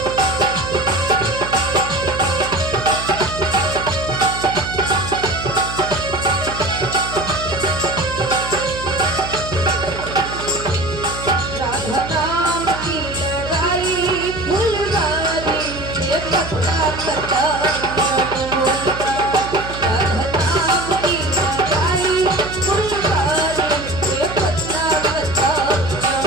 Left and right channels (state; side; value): noise; right; hum, 10 dB below the sound